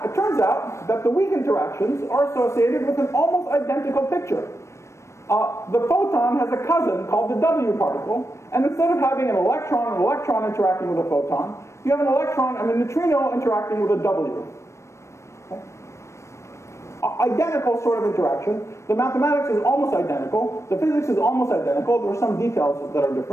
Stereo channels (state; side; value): late; right; 0.13 ms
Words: it turns out that the weak interactions are associated with an almost identical picture. The photon has a cousin called the W particle, and instead of having an electron interacting with a photon, you have a neutrino interacting with a W. Okay? Identical sort of interaction. The mathematics is almost identical. The physics is almost identical. There are some details that are